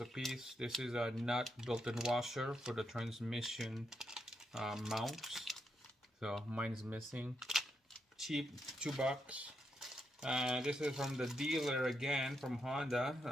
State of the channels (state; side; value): normal; both; correlation 0.81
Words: a piece. This is a nut built-in washer for the transmission mounts. So mine's missing. Cheap, $2. This is from the dealer again, from